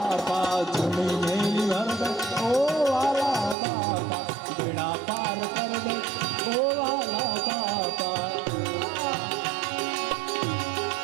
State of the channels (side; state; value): left; drops out; at 3.6 s